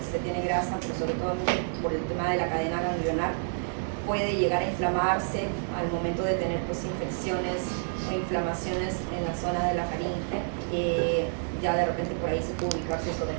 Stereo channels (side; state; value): left; silent; digital silence